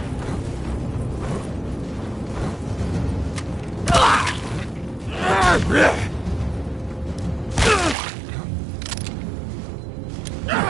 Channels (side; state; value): left; drops out; at 8.0 s